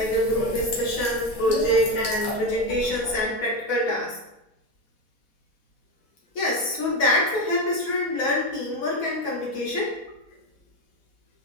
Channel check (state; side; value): late; right; 4.1 ms